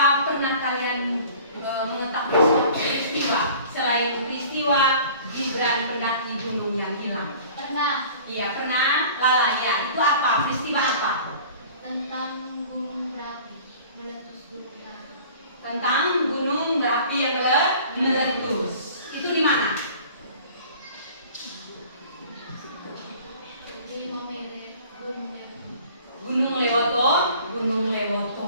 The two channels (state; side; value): inverted; both; correlation -0.46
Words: pernah kalian mengetahui suatu peristiwa selain peristiwa Gibran pendaki gunung yang hilang? Pernah. Iya, pernah. Lala, ya. Itu apa? Peristiwa apa? Tentang gunung berapi, meletus gunung berapi. Tentang gunung berapi yang meletus. Itu di mana? Di Maumere.